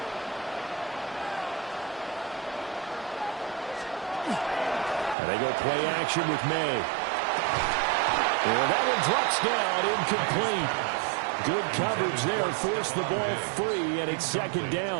And they go play action with May. And that one drops down, incomplete. Good coverage there, forced the ball free, and it's second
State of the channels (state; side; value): drops out; left; at 5.2 s